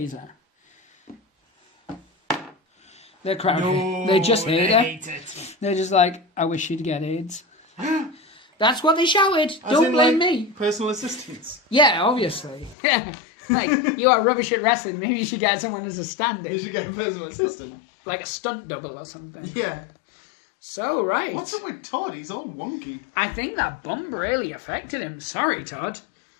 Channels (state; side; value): drops out; right; at 12.8 s